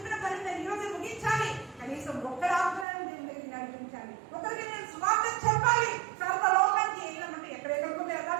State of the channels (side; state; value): left; drops out; at 2.9 s